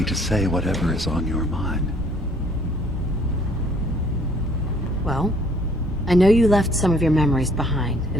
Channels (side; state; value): both; normal; correlation 0.60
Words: to say whatever is on your mind. Well, I know you left some of your memories behind